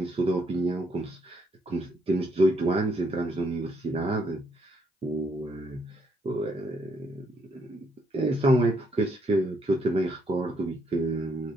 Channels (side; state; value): both; normal; correlation 0.72